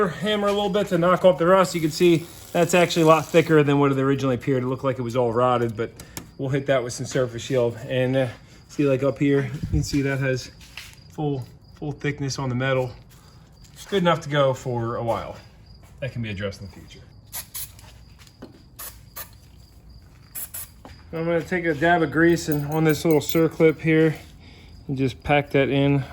hammer a little bit to knock off the rust. You can see that's actually a lot thicker than what it originally appeared. It looked like it was all rotted, but we'll hit that with some surface shield. And see, like up here, you can see that has full thickness on the metal. It's good enough to go for a while. That can be addressed in the future. I'm gonna take a dab of grease and on this little circlip here, and just pack that in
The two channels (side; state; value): both; identical; correlation 1.00